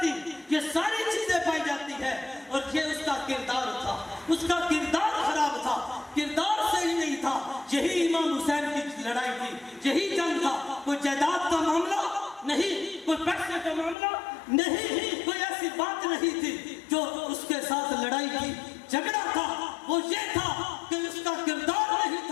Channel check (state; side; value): drops out; right; at 14.0 s